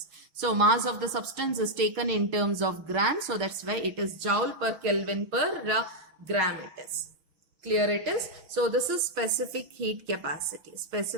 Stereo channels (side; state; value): left; late; 6.4 ms